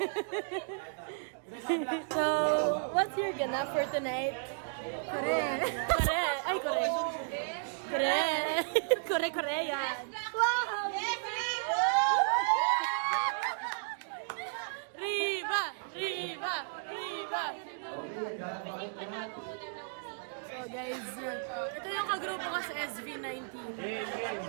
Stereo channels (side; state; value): left; silent; digital silence